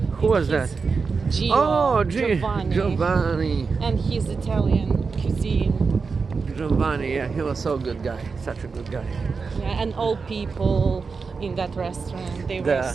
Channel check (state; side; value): quieter; left; 4.9 dB